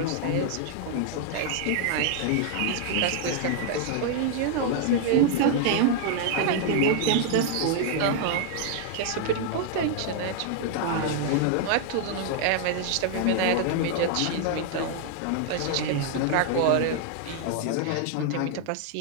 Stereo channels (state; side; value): different; both; correlation 0.00